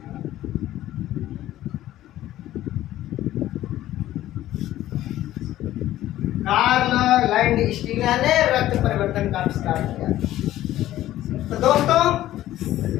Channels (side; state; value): right; quieter; 14.0 dB